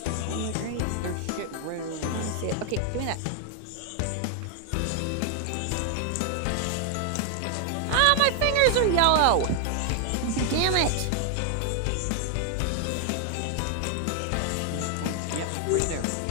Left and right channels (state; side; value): different; both; correlation 0.00